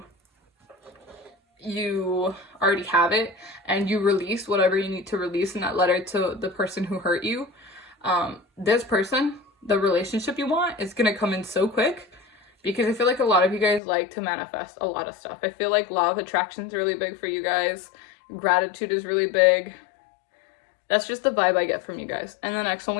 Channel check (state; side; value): drops out; right; at 13.8 s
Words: already have it, and you release whatever you need to release in that letter to the person who hurt you. This person, the relationship you want, is going to come in so quick. Because I feel like a lot of you guys like to manifest a lot of stuff. I feel like law of attraction is really big for you guys. Gratitude is really big. That's just the vibe I get from you guys. And the next one